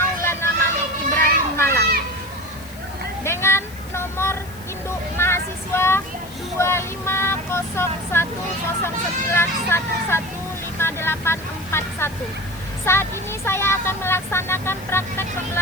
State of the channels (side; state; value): left; noise; hiss, 20 dB below the sound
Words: Malik Ibrahim Malang dengan nomor induk mahasiswa 250109115841. Saat ini saya akan melaksanakan praktek